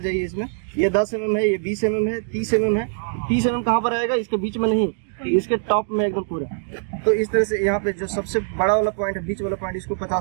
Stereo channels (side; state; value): left; silent; digital silence